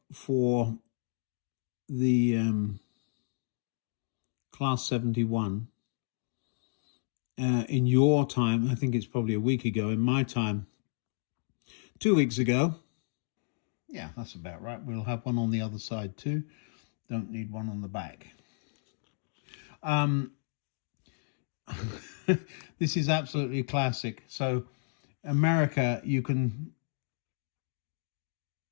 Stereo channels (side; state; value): right; silent; digital silence